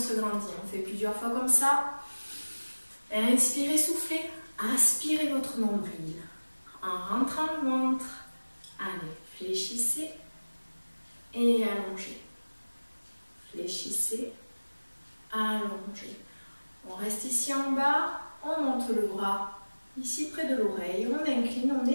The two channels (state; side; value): inverted; both; correlation -1.00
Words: grandit. On fait plusieurs fois comme ça. Inspirez, soufflez. Aspirez votre nombril. En rentrant le ventre. Allez, fléchissez et allongez. Fléchissez, allongez. On reste ici en bas, on monte le bras ici près de l'oreille, on incline, on